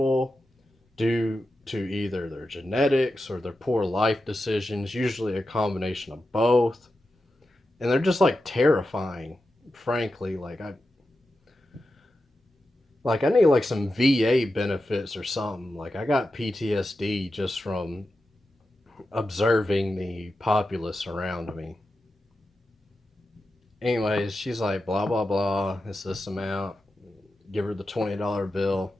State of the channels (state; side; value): normal; both; correlation 0.90